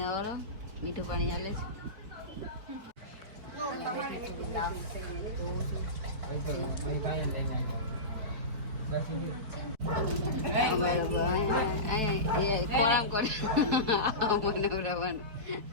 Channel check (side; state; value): left; late; 4.5 ms